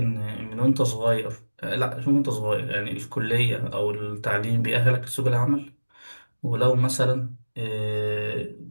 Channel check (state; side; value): inverted; both; correlation -1.00